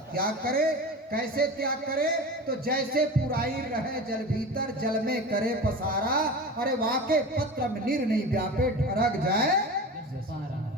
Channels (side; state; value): both; normal; correlation 0.31